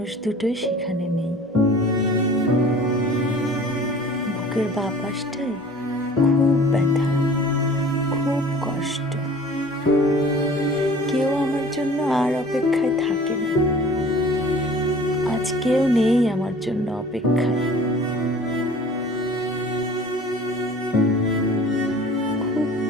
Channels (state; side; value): normal; both; correlation 0.46